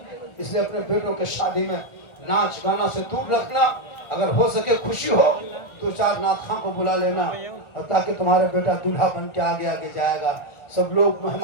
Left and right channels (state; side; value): late; right; 1.4 ms